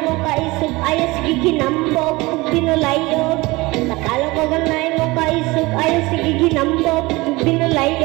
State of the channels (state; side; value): quieter; left; 22.3 dB